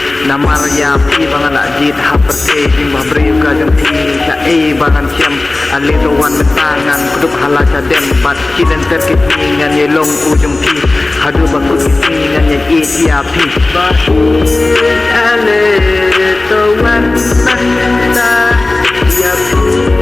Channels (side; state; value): right; quieter; 3.1 dB